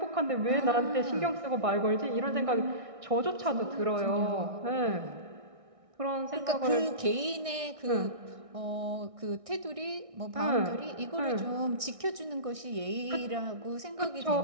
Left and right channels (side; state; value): left; late; 1.6 ms